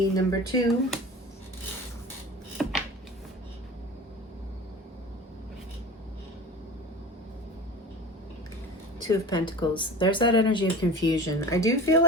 number 2. Two of Pentacles. There's that energy of confusion. I do feel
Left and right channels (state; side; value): normal; both; correlation 0.32